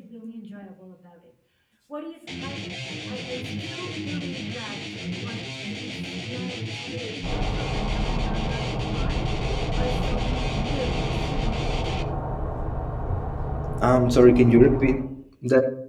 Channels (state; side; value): identical; both; correlation 1.00